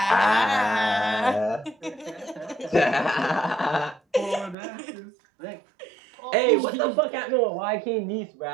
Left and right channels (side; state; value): left; drops out; at 4.5 s